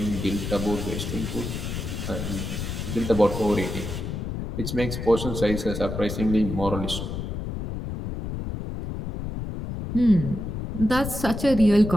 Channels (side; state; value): left; noise; rumble, 5 dB below the sound